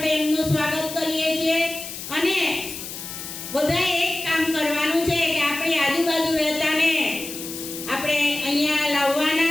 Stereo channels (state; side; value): noise; left; hiss, 9 dB below the sound